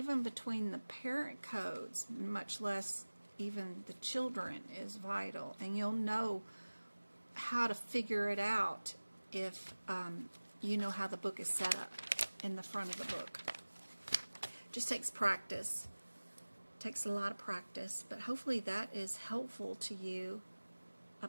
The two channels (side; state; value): both; inverted; correlation -1.00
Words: between the parent codes, much less even the children, is vital. And you'll know how to figure it out if you know how the book is set up in the front of the book. Just takes practice. Takes a lot of practice, but hopefully that is helpful to you